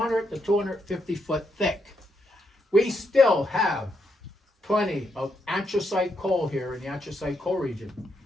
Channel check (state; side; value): normal; both; correlation 0.80